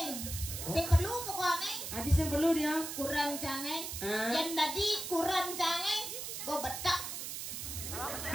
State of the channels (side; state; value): right; noise; hiss, 6 dB below the sound